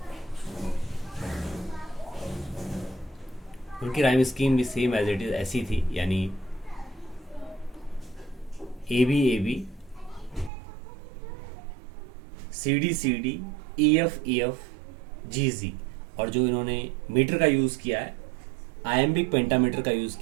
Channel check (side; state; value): left; drops out; at 10.5 s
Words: उनकी राइम स्कीम भी सेम एज इट इज ऐसी थी, यानी A B C D E F G. और जो इन्होंने मीटर का यूज़ किया है, आयम्बिक पेंटामीटर का यूज़